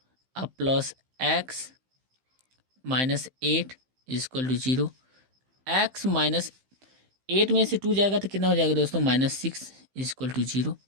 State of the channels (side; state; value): left; late; 15 ms